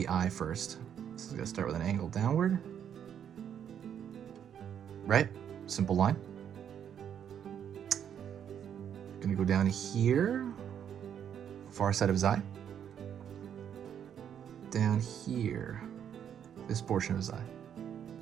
eye first. So I'm gonna start with an angle downward. Right? Simple line. Gonna go down here, far side of his eye. Down here, this portion of his eye.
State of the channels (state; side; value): quieter; left; 8.9 dB